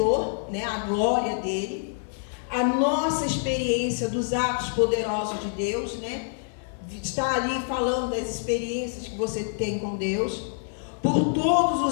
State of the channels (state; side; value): silent; right; 55 dB below the other